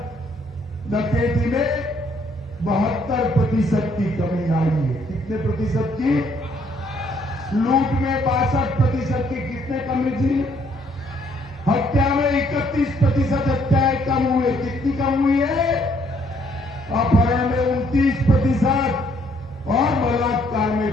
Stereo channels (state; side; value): normal; both; correlation 0.67